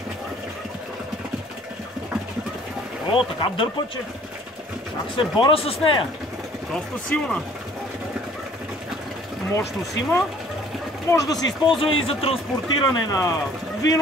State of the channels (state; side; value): normal; both; correlation 0.55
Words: О, така дърпа, че как се боря с нея. Доста силна. Мощност има. Може да се използва и за транспортиране на